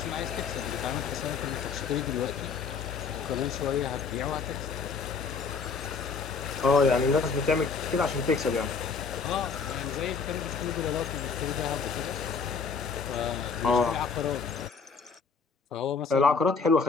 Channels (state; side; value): quieter; right; 5.3 dB